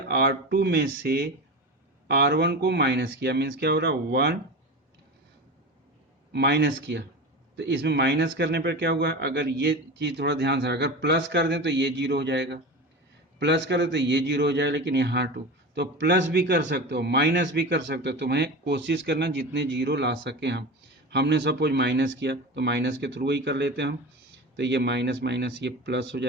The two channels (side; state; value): both; normal; correlation 0.28